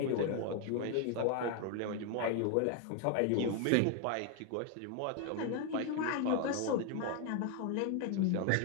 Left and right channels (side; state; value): both; different; correlation 0.01